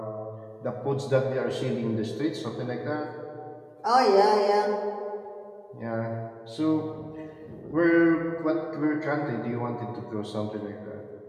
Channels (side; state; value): both; identical; correlation 1.00